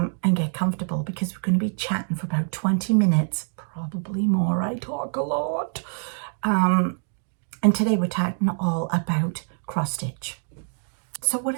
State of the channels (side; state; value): left; silent; 62 dB below the other